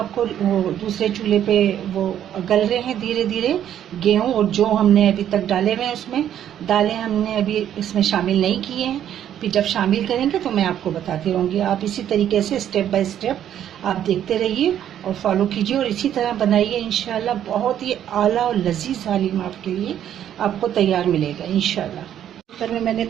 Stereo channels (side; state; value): left; quieter; 10.4 dB